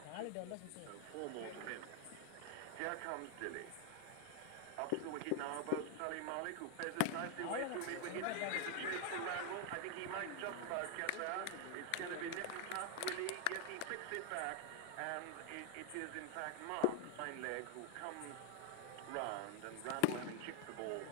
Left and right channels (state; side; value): different; both; correlation 0.00